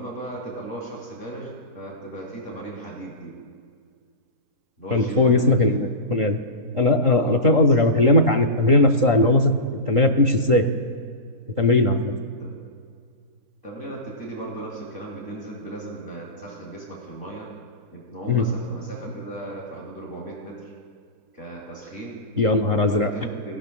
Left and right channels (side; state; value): left; late; 3.8 ms